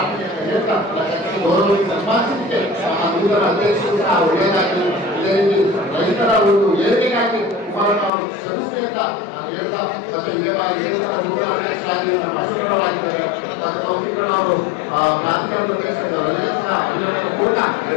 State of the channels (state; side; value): drops out; right; at 8.1 s